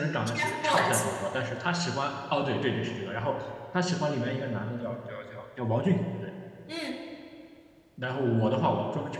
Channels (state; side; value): identical; both; correlation 1.00